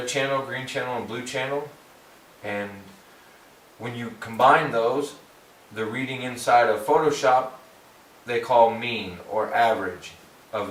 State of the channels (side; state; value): both; identical; correlation 1.00